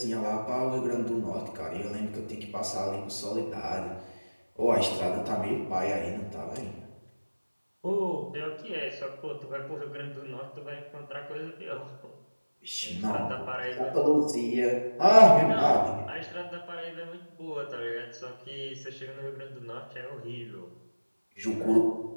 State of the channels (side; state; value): both; inverted; correlation -1.00